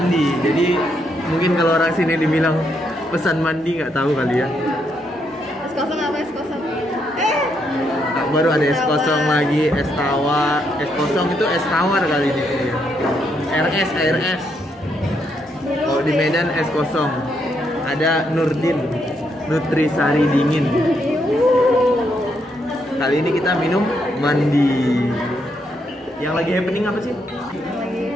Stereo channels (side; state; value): both; normal; correlation 0.77